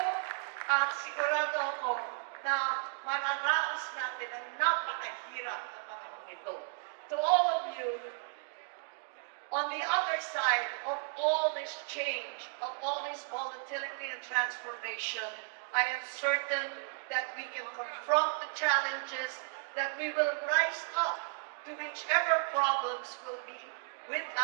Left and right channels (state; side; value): silent; left; 55 dB below the other